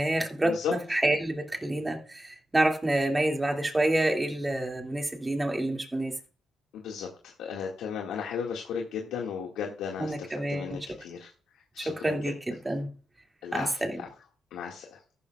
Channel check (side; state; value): both; normal; correlation 0.90